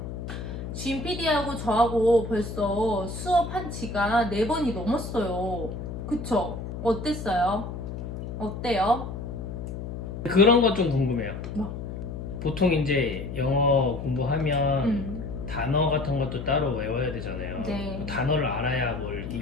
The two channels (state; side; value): noise; left; hum, 7 dB below the sound